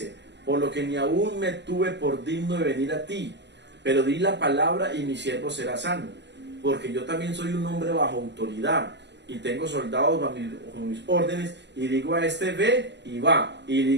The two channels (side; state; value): left; late; 0.51 ms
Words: por lo que ni aún me tuve por digno de venir a ti, pero di la palabra y mi siervo será sano, porque yo también soy un hombre bajo autoridad, y tengo soldados bajo mis órdenes, y digo a este: ve, y va, y